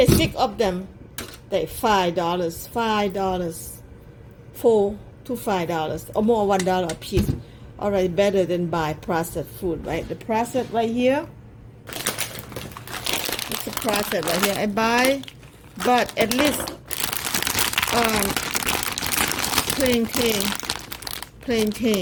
6 of them. They $5, $4 to $5 or more, $1 a piece. All right, better than buy processed food, right? The processed right here. It's the processed right here. I buy, but at least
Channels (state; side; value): identical; both; correlation 1.00